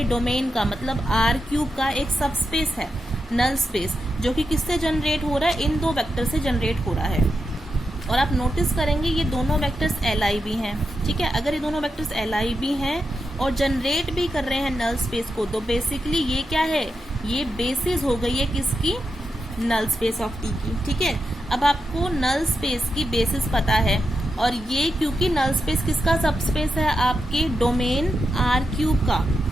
डोमेन का, मतलब आर क्यूब का एक सबस्पेस है नल स्पेस, जो कि किससे जनरेट हो रहा है, इन दो वेक्टर से जनरेट हो रहा है। और आप नोटिस करेंगे ये दोनों वेक्टर्स LIV हैं, ठीक है। अगर ये दोनों वेक्टर्स LIV हैं और जनरेट भी कर रहे हैं नल स्पेस को, तो बेसिकली ये क्या है, ये बेसिस हो गई है किसकी, नल स्पेस ऑफ टी की, ठीक है। अब आपको नल स्पेस की बेसिस पता है, और ये क्योंकि नल स्पेस किसका सबस्पेस है, आपके डोमेन आर क्यूब का,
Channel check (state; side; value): normal; both; correlation 0.87